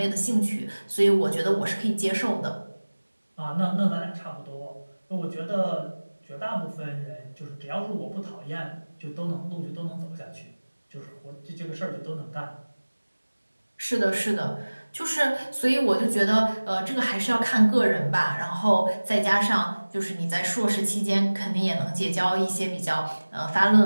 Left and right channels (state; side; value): inverted; both; correlation -1.00